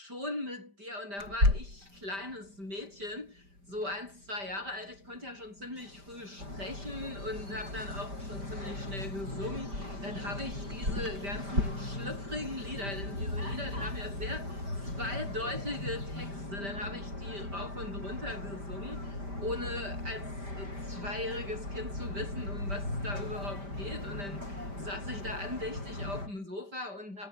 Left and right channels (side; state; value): left; late; 5.1 ms